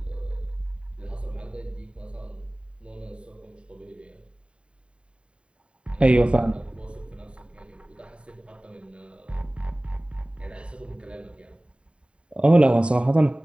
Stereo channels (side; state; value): left; late; 0.056 ms